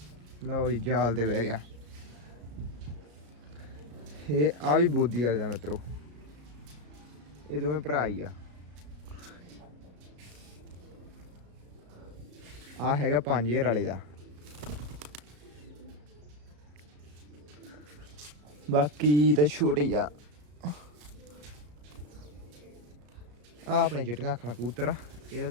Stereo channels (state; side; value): late; left; 34 ms